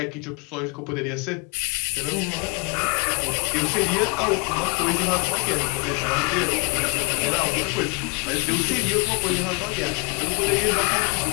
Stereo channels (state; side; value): quieter; right; 31.5 dB